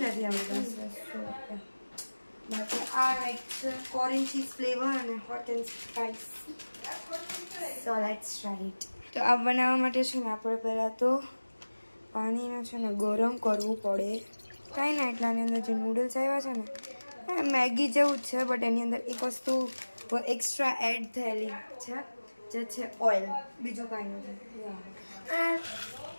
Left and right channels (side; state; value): both; inverted; correlation -1.00